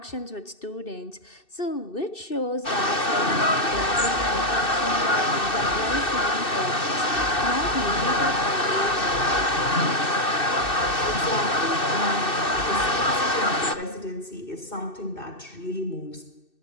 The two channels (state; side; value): late; right; 2.6 ms